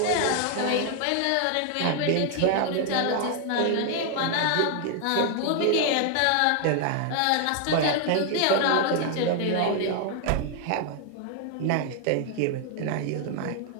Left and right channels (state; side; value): different; both; correlation 0.00